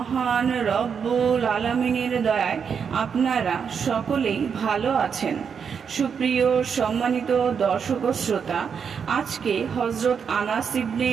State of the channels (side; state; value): left; quieter; 6.7 dB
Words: রব্বুল আলামিনের দয়ায় আপনারা সকলেই ভালো আছেন। সুপ্রিয় সম্মানিত দর্শক ও শ্রোতা, আজকে হযরত আনাস ইবনে